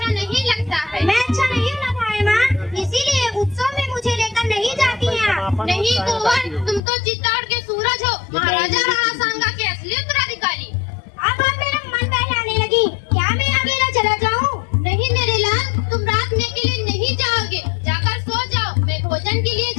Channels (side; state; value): right; drops out; at 6.8 s